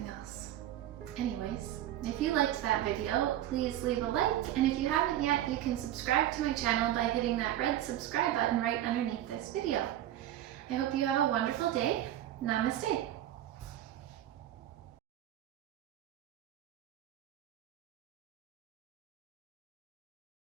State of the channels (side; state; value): left; quieter; 12.6 dB